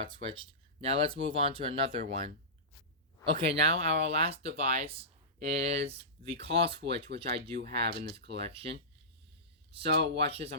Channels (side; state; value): both; normal; correlation -0.19